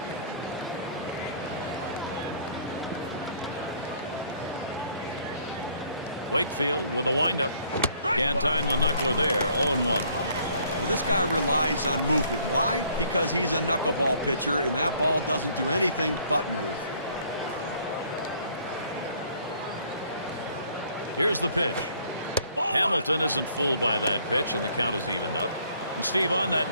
Wakefield with a windup. Can't time the knuckler there. 0-1. Well, this guy relies on movement. Why? Because he's a knuckleball pitcher, and that ball doesn't do anything but move. Here's the pitch. Hamilton isn't fooled by that pitch, and the count is evened up. And Steve, on that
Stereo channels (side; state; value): both; inverted; correlation -0.61